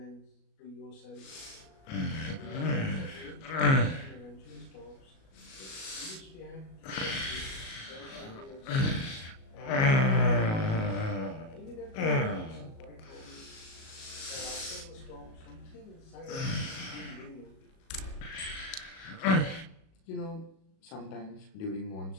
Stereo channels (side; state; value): right; late; 37 ms